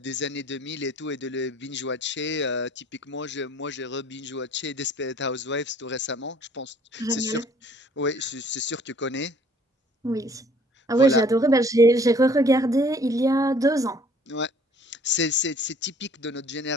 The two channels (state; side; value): normal; both; correlation 0.56